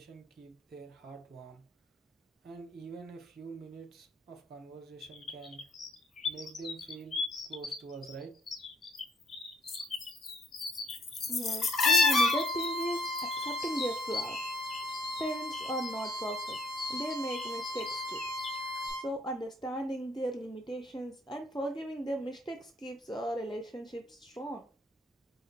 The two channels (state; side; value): normal; both; correlation 0.65